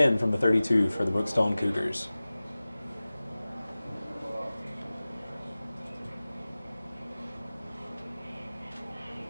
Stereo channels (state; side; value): inverted; both; correlation -0.97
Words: from the 32 for the Brookstone Cougars.